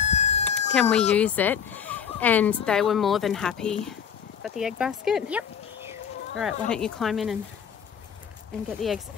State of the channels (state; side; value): quieter; right; 7.6 dB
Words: Can we use it? And they were more than happy. Got the egg basket? Yep. All right, why don't you climb in and get the eggs?